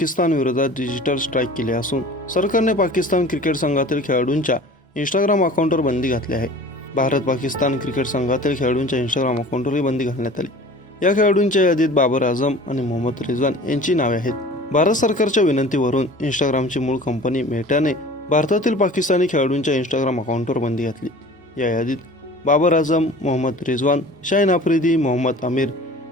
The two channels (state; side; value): normal; both; correlation 0.43